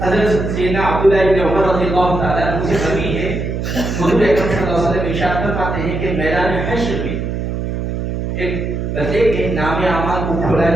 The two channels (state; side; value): noise; right; hum, 3 dB below the sound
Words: حضرت سیدنا عبداللہ ابن عمر رضی اللہ تعالیٰ عنہ سے مروی ہے حضور اکرم صلی اللہ علیہ وسلم ارشاد فرماتے ہیں کہ میدان حشر میں ایک بندے کے نام اعمال کو کھولا